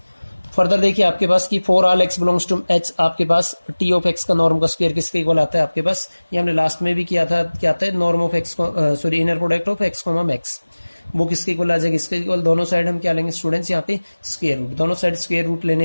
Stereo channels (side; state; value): both; inverted; correlation -1.00